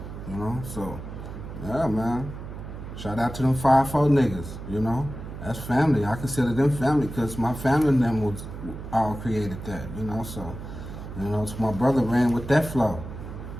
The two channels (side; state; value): right; noise; hum, 10 dB below the sound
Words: you know. So, yeah, man. Shout out to them 5-4 niggas, you know. That's family. I consider them family because my family and them was all created that, you know. So, you know, so my brother ran with that flow,